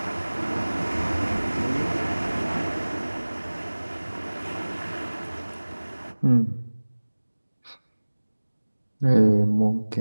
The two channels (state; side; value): inverted; both; correlation -1.00